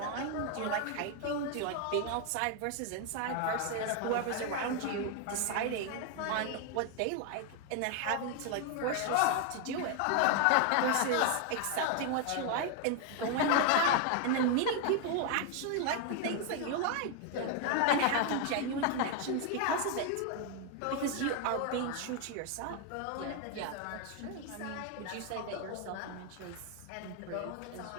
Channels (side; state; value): both; different; correlation 0.01